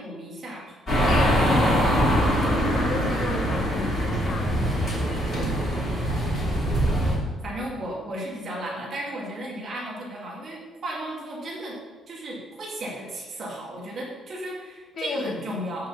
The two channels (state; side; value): normal; both; correlation 0.71